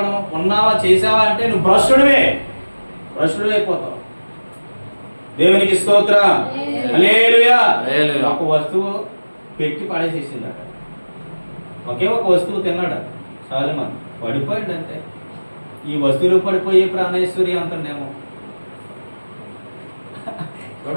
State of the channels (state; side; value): inverted; both; correlation -1.00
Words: ఉన్నావా చేసావా అంటే నువ్వు భ్రష్టుడివే అయిపోతావు. దేవునికి స్తోత్రం. హల్లెలూయా. ఒక వస్తువు పెట్టి పడేసేసిందట. ఒకే ఒక వస్తువు తిన్నాడు సొలొమోను, పడిపోయాడు. అంతే. ఈ వస్తువులు పడిపోయే ప్రాణేశ్వరి అంటుండేమో.